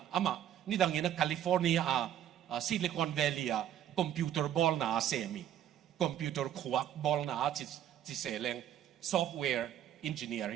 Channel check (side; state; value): left; quieter; 10.9 dB